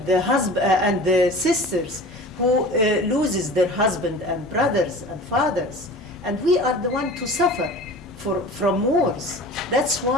the husband and the sisters who loses their husband and brothers and fathers. And we are the one to suffer from wars. That's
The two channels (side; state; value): both; normal; correlation 0.39